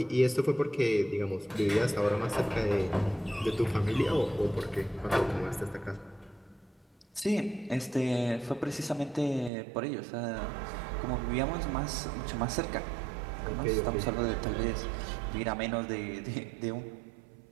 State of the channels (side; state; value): left; drops out; at 9.5 s